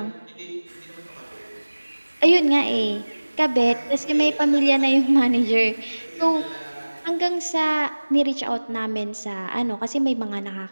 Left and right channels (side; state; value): both; inverted; correlation -1.00